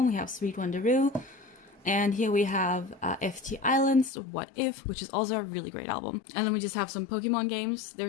We have Sweet Wonderoo. And here we have FT Islands, What If, which is also a really great album. And then we just have some Pokemon games.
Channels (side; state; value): right; drops out; at 4.1 s